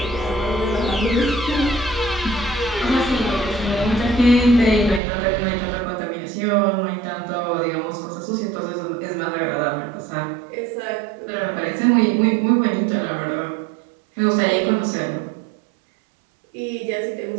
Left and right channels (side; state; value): left; drops out; at 5.0 s